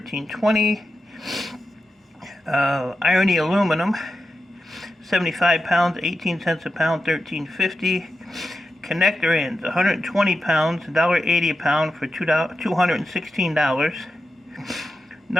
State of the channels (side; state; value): both; normal; correlation 0.90